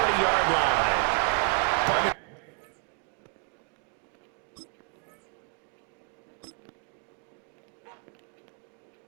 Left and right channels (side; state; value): left; quieter; 39.3 dB